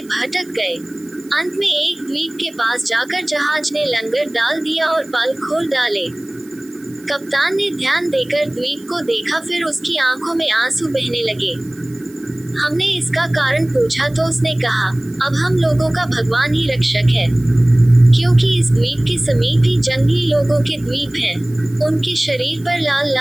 भटक गए। अंत में एक द्वीप के पास जाकर जहाज ने लंगर डाल दिया और पाल खोल डाले। कप्तान ने ध्यान देकर द्वीप को देखा, फिर उसकी आंखों में आंसू बहने लगे। हमने इसका कारण पूछा तो उसने कहा, अब हम लोगों का भगवान ही रक्षक है, क्योंकि इस द्वीप के समीप ही जंगली लोगों के द्वीप हैं। उनके शरीर पर लाल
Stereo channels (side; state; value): right; noise; hiss, 25 dB below the sound